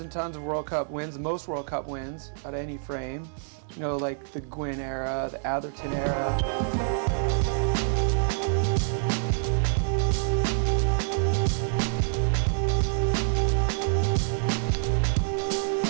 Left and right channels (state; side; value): silent; left; digital silence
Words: and tons of World Cup wins, the most World Cup wins out of any frame. You know, like the Gwin era, the Atherton era.